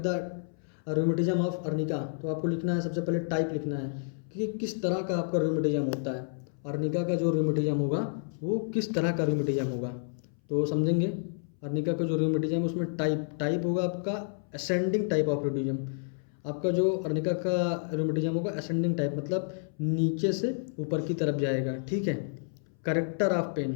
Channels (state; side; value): silent; right; 58 dB below the other